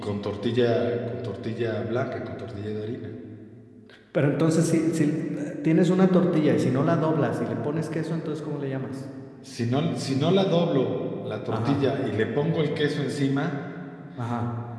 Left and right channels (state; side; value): identical; both; correlation 1.00